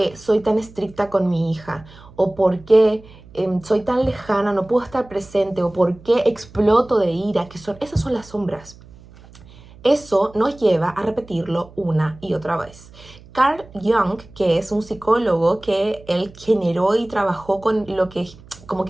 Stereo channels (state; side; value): noise; right; hum, 22 dB below the sound